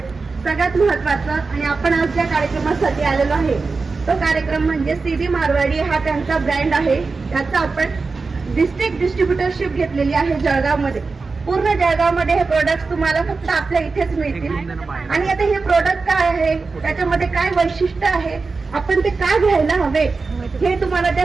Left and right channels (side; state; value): left; quieter; 4.2 dB